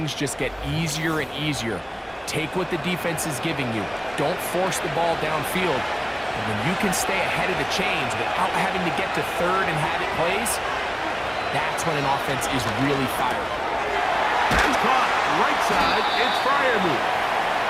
just get easier and easier. Take what the defense is giving you. Don't force the ball downfield. And when you can stay ahead of the chains without having to get to third and have it plays, that's when an offense is really fired. And caught right side, it's Freiermuth.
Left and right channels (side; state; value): both; identical; correlation 1.00